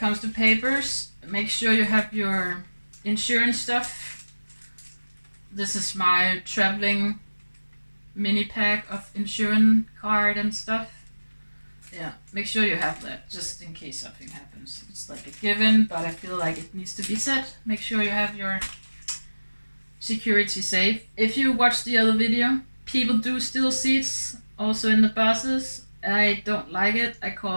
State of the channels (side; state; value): both; inverted; correlation -1.00